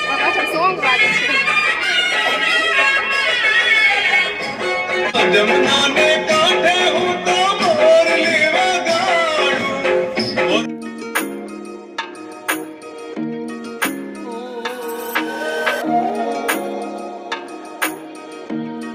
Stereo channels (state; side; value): identical; both; correlation 1.00